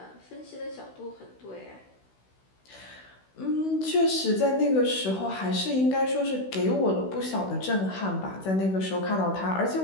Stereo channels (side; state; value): right; late; 16 ms